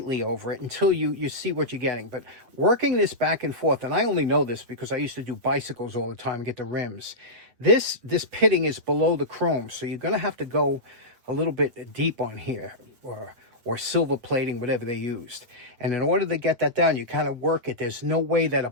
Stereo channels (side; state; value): left; late; 8.7 ms